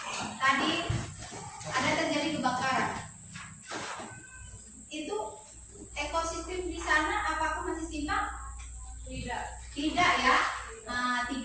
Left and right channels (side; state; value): both; identical; correlation 1.00